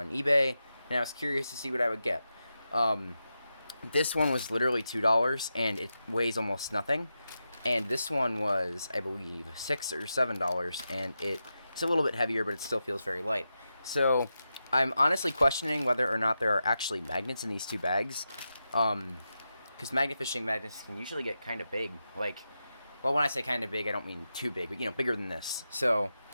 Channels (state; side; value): inverted; both; correlation -0.89